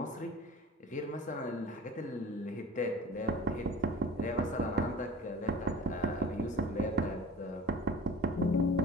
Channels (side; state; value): both; normal; correlation 0.41